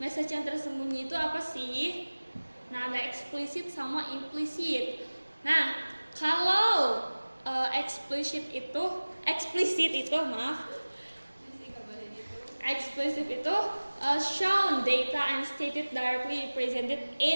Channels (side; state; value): both; inverted; correlation -1.00